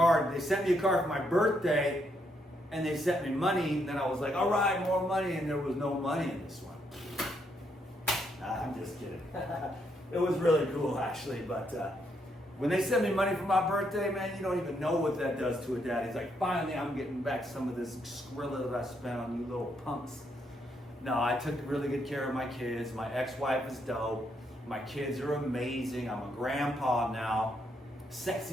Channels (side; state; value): both; normal; correlation 0.76